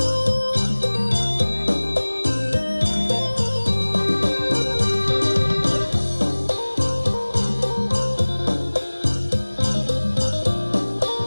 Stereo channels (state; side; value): inverted; both; correlation -1.00